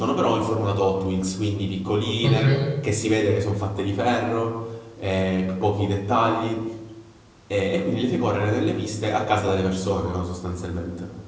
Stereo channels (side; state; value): both; identical; correlation 1.00